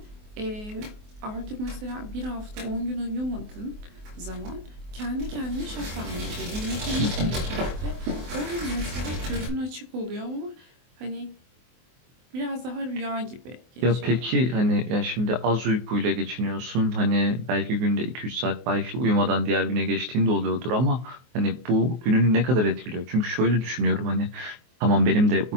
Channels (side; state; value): left; late; 24 ms